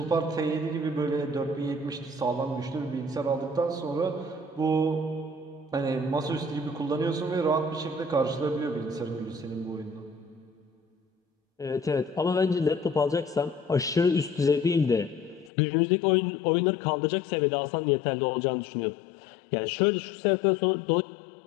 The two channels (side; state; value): right; drops out; at 15.5 s